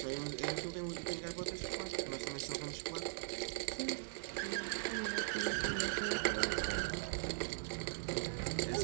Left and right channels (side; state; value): left; silent; 51 dB below the other